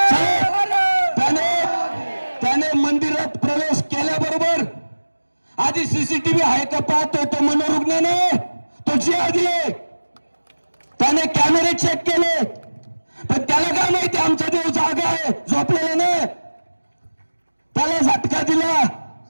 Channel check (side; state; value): both; inverted; correlation -1.00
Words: त्याने मंदिरात प्रवेश केल्याबरोबर आधी सीसीटीव्ही आहे का पाहतोय तो मनोरुग्ण नाही, तो जिहादी आहे. त्याने कॅमेरे चेक केले, पण त्याला काय माहिती आमचा देव जागा आहे, झोपलेला नाही. त्याला झटका दिला.